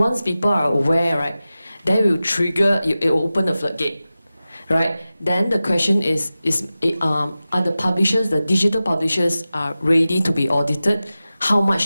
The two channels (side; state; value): both; inverted; correlation -0.95